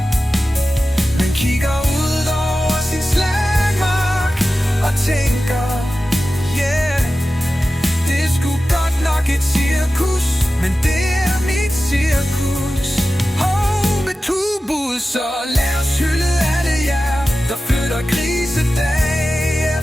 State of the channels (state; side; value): normal; both; correlation 0.94